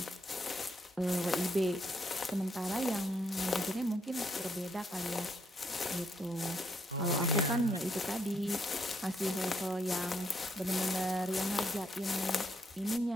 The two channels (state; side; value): normal; both; correlation 0.74